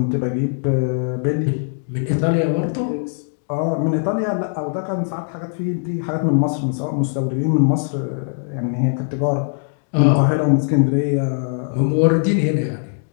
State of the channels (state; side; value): silent; right; digital silence